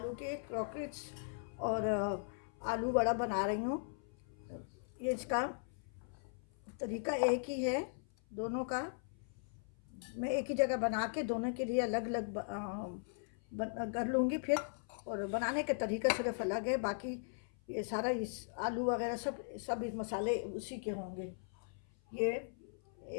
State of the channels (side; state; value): right; silent; 52 dB below the other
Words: के क्रॉकेट्स और आलू वड़ा बना रही हूँ। ये इसका तरीका एक ही है दोनों का। मैं एक ही जगह बना के दोनों के लिए अलग अलग कर लूँगी फिर, और बनाने के तरीका सिर्फ अलग है। बाकी ये सारा इस आलू वगैरह सब इस मसाले उसी के होंगे। ये